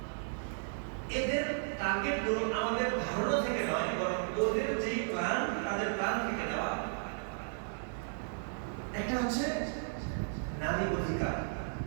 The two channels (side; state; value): left; silent; digital silence